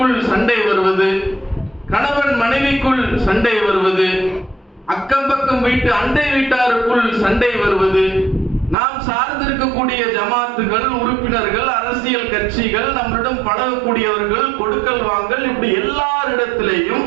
சண்டை வருவது, கணவன் மனைவிக்குள் சண்டை வருவது, அக்கம் பக்கம் வீட்டு அண்டை வீட்டாருக்குள் சண்டை வருவது, நாம் சார்ந்திருக்கக்கூடிய ஜமாத்துகள், உறுப்பினர்கள், அரசியல் கட்சிகள், நம்மளிடம் பழகக்கூடியவர்கள், கொடுக்கல் வாங்கல், இப்படி எல்லாரிடத்திலேயும்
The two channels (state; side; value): drops out; left; at 8.8 s